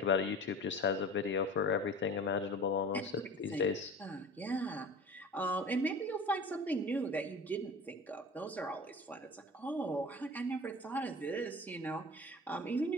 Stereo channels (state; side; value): normal; both; correlation 0.38